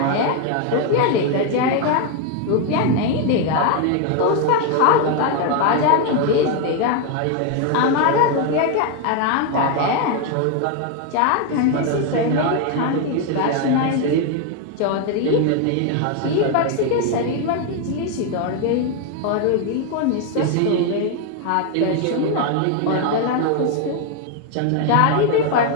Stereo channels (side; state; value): both; different; correlation 0.01